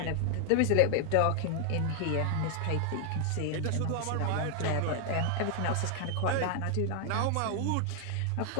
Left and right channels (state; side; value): different; both; correlation 0.00